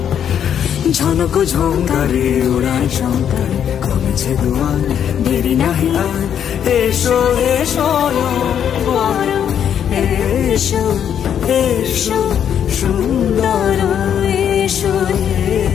ঝনক ঝঙ্কারে ওড়ায় শঙ্কারে, কমেছে দুয়ার দেরি নাহি আর। এসো হে স্বয়ংবর, এসো এসো সুন্দর, এসো হে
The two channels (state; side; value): quieter; right; 8.9 dB